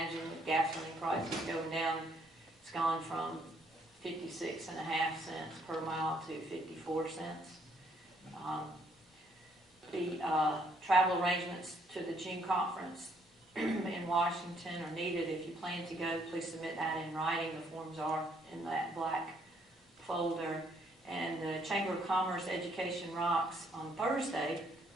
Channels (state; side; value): normal; both; correlation 0.68